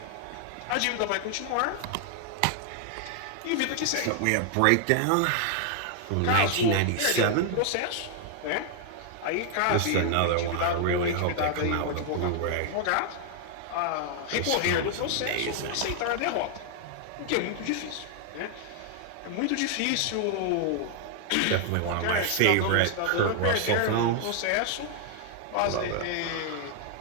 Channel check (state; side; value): different; both; correlation 0.00